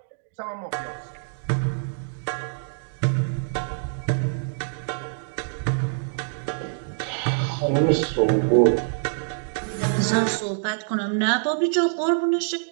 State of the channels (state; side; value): silent; left; digital silence